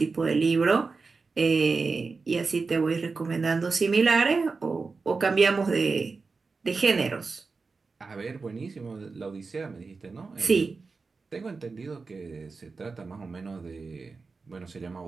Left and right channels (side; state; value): left; quieter; 4.3 dB